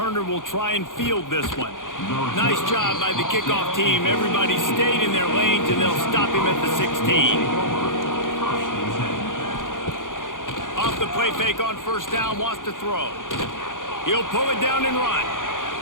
will try and field this one. Nice job by the kickoff team. Everybody stayed in their lanes, and they'll stop him at the 16. Off the play fake on first down, wants to throw. He'll pull it down and run.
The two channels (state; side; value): late; right; 0.88 ms